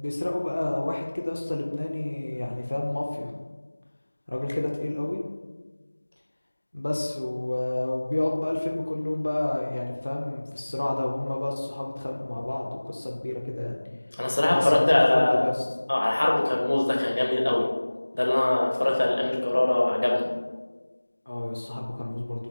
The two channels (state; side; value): inverted; both; correlation -1.00